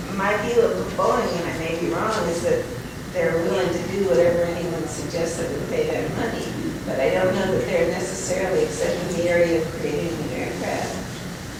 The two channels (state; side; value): identical; both; correlation 1.00